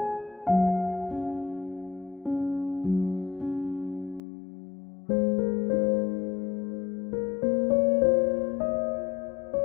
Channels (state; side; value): drops out; right; at 4.2 s